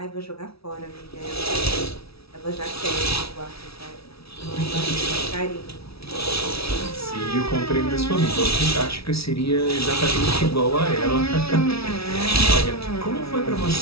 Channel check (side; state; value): right; late; 0.76 ms